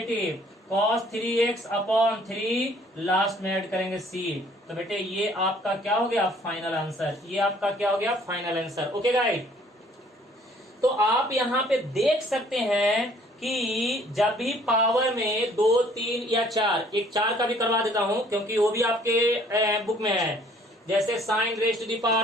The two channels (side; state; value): both; normal; correlation 0.58